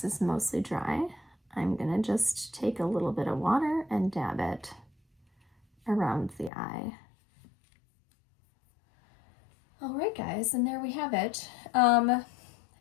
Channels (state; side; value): drops out; right; at 6.5 s